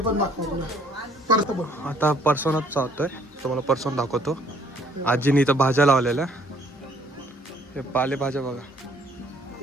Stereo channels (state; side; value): normal; both; correlation 0.61